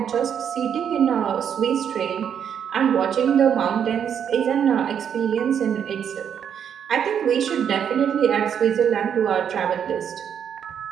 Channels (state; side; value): quieter; left; 8.3 dB